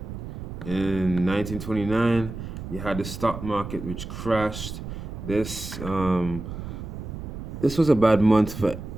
in 1929, you had the stock market, which crashed. This was a bad month for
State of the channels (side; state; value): right; noise; rumble, 8 dB below the sound